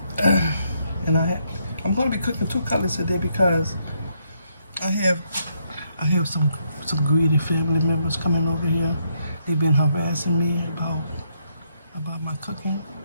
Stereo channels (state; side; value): inverted; both; correlation -0.75